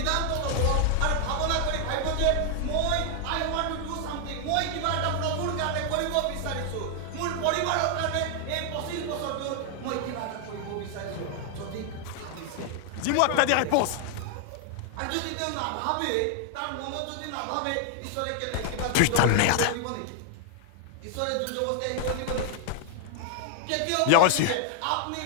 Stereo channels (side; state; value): both; different; correlation 0.00